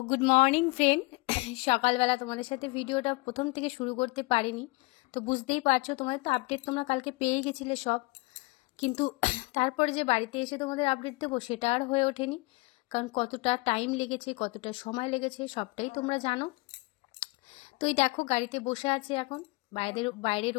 good morning friend. সকালবেলা তোমাদের সাথে ভিডিওটা প্রথম থেকে শুরু করতে পারিনি, তো বুঝতেই পারছো তোমাদের তো আপডেট তোমরা কালকে পেয়ে গেছিলে সব, কিন্তু তারপরে যে বাড়িতে এসে তোমাদের আপডেট দেবো সেটা আর হয়ে ওঠেনি, কারণ কতটা টাইম লেগেছে, কতটা সময় লেগেছে সবটাই তোমরা জানো। তো এই দেখো গাড়িতে বসে আছে এখন, বাইরের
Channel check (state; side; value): quieter; right; 25.2 dB